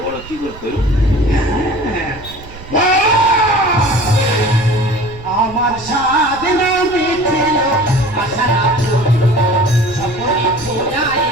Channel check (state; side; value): noise; right; rumble, 17 dB below the sound